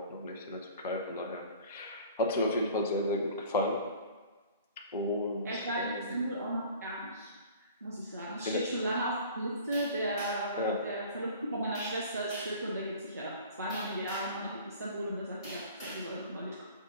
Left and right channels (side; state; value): both; inverted; correlation -0.45